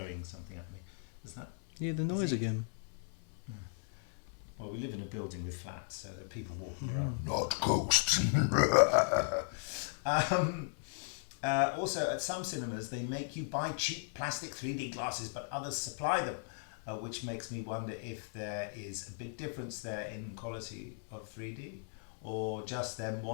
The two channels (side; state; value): right; silent; 53 dB below the other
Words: something at me. Is that? Yeah, the noise again. Yeah. Well, we live in a building with flats, so there are people walking around. Not ghosts. Also, at some cinemas, they make you buy cheap plastic 3D glasses, but others supply them, which makes me wonder if there is a big difference there in quality of 3D, or just them